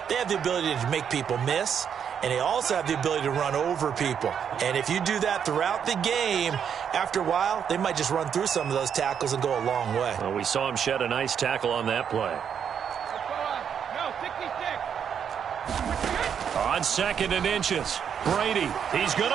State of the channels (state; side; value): quieter; left; 7.9 dB